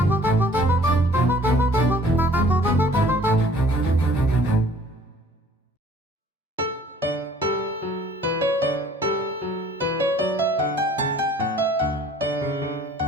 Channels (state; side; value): normal; both; correlation 0.54